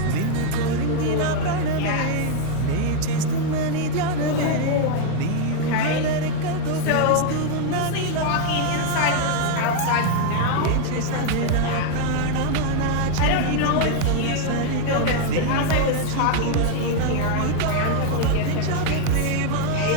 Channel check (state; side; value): different; both; correlation 0.00